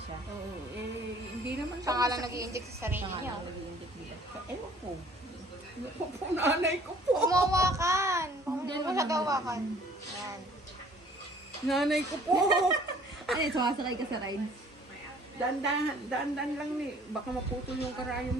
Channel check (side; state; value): both; normal; correlation 0.55